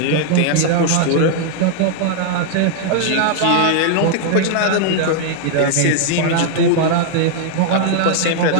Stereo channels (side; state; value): both; different; correlation -0.01